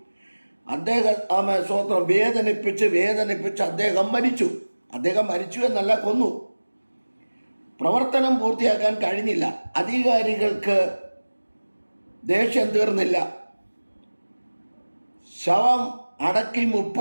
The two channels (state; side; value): inverted; both; correlation -1.00